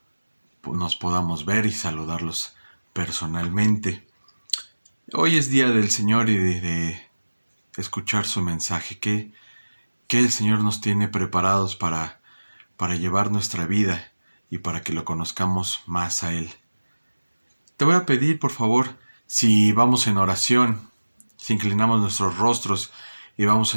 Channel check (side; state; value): both; inverted; correlation -1.00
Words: nos podamos ver y saludarlos personalmente. Hoy es día del Señor y de escuchar su mensaje. ¿Qué el Señor nos tiene preparados para llevar nuestra vida y para que lo conozcamos más a Él? Te voy a pedir, por favor, si vamos en oración, si inclinamos nuestros rostros y vamos